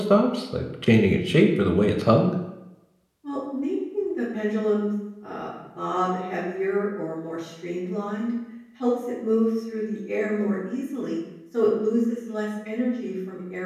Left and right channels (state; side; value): identical; both; correlation 1.00